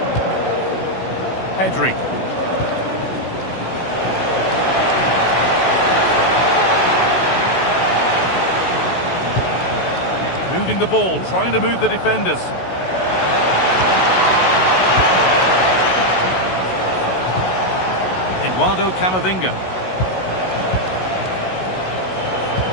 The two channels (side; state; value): right; late; 16 ms